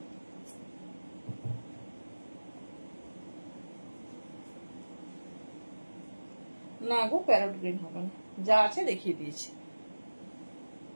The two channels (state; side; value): inverted; both; correlation -1.00